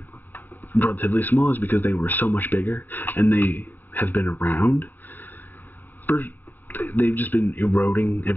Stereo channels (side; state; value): right; late; 0.089 ms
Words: relatively small, is because they were so much bigger, and they have been around? They've just been eroding